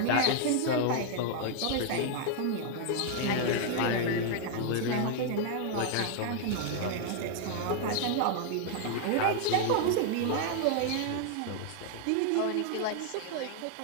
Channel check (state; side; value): different; both; correlation 0.00